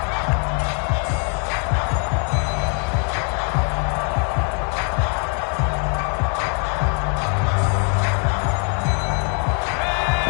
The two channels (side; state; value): right; quieter; 39.5 dB